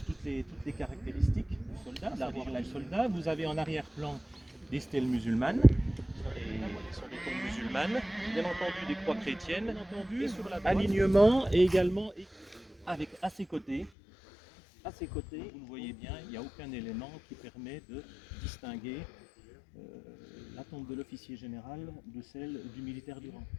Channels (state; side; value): drops out; right; at 13.9 s